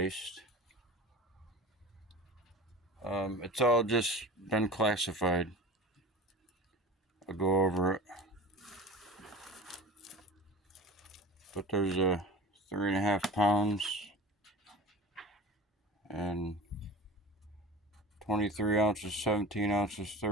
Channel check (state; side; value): normal; both; correlation 0.35